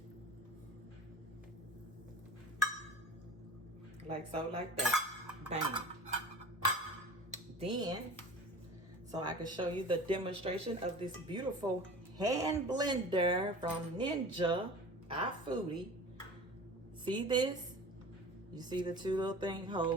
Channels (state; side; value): normal; both; correlation 0.39